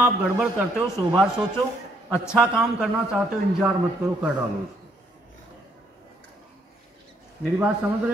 गड़बड़ करते हो 100 बार सोचो। अच्छा काम करना चाहते हो, इंतजार मत करो, कर डालो उसको। मेरी बात समझ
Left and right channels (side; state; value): both; normal; correlation 0.69